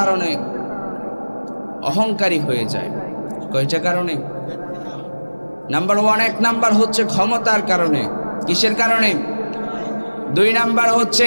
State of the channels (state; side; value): inverted; both; correlation -1.00